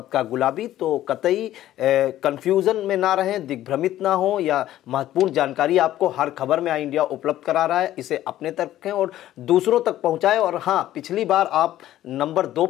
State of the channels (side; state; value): right; quieter; 13.4 dB